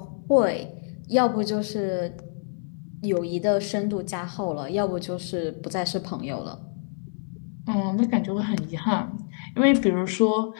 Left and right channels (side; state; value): right; silent; 61 dB below the other